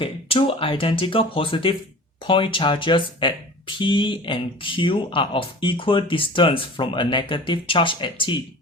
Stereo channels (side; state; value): both; normal; correlation 0.40